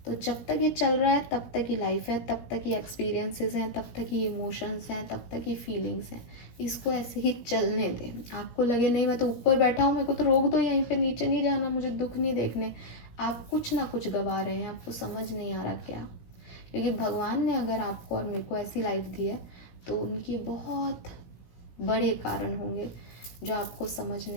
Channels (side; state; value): right; late; 17 ms